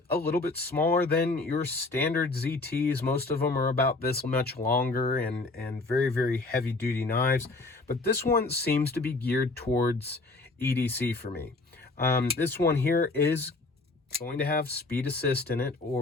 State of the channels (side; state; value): right; quieter; 3.3 dB